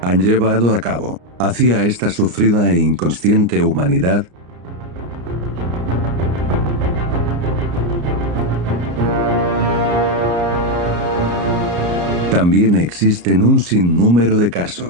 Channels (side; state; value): left; late; 34 ms